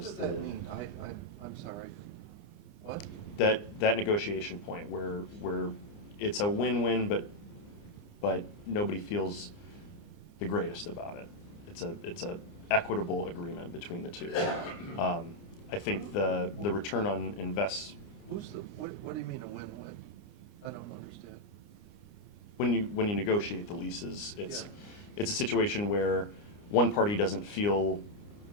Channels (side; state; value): right; late; 29 ms